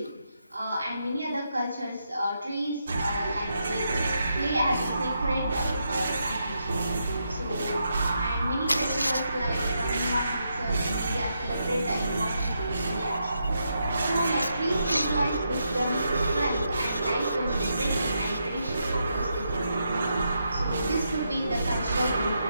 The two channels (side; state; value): both; inverted; correlation -0.82